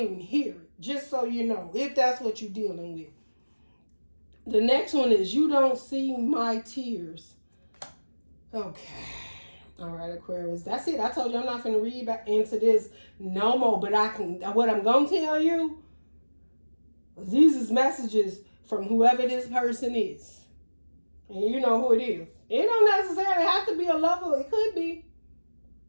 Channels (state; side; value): inverted; both; correlation -1.00